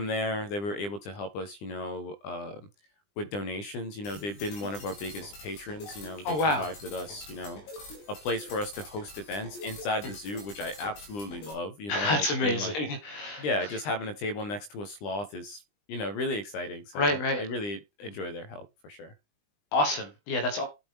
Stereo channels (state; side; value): late; right; 20 ms